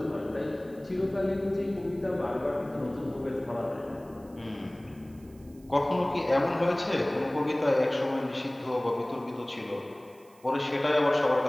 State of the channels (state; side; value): noise; right; hiss, 29 dB below the sound